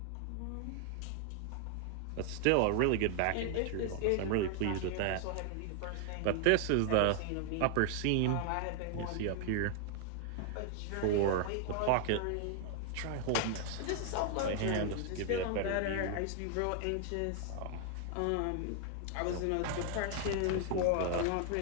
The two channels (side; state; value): both; different; correlation 0.00